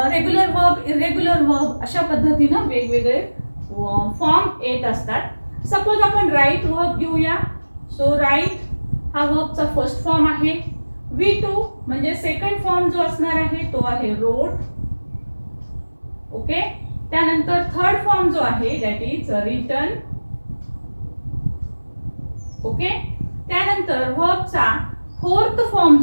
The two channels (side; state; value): both; inverted; correlation -1.00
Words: वर्ब, इरेग्युलर वर्ब अशा पद्धतीनं वेगवेगळे फॉर्म येत असतात. सपोज आपण राईट वर्ब घेऊया. सो राईट हा वर्बचा फर्स्ट फॉर्म आहे. V2 म्हणजे सेकंड फॉर्म जो असणार आहे तो आहे रोट. ओके. त्यानंतर थर्ड फॉर्म जो आहे दॅट इज रिटन. ओके. त्यानंतर वर्बचा फोर्थ फॉर्म